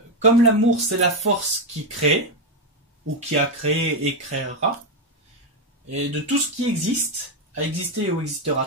comme l'amour c'est la force qui crée, ou qui a créé et créera, et de tout ce qui existe, a existé ou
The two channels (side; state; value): both; normal; correlation 0.07